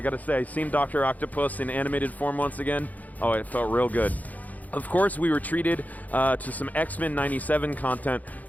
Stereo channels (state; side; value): late; right; 0.078 ms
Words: got to say, seeing Dr. Octopus in animated form once again, oh, it felt real good. Of course, we were treated to some X-Men 97 content.